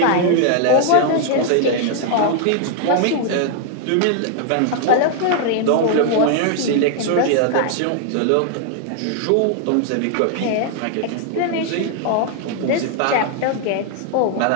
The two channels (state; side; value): different; both; correlation 0.00